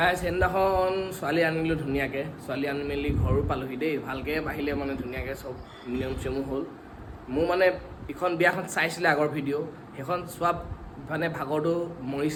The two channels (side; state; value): both; identical; correlation 1.00